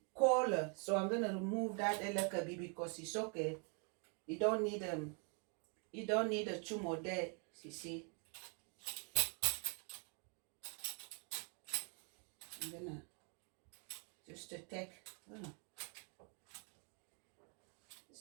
colder. So I'm gonna remove that elakabi because it's okay. You don't need a two more there. You see, I'm gonna just to take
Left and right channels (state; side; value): quieter; left; 38.0 dB